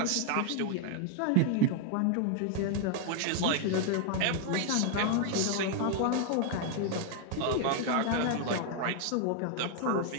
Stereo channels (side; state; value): both; different; correlation 0.00